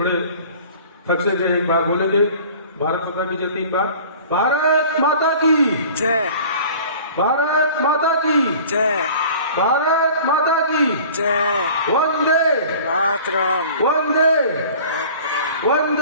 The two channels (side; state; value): both; inverted; correlation -0.45